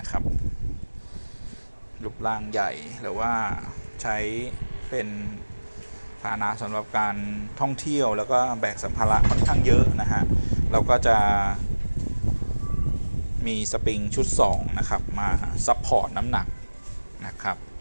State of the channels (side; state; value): both; inverted; correlation -1.00